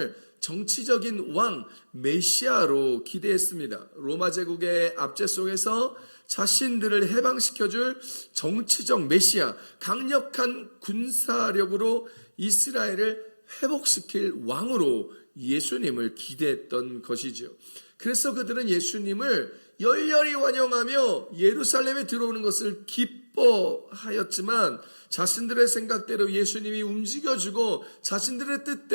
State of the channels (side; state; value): both; inverted; correlation -1.00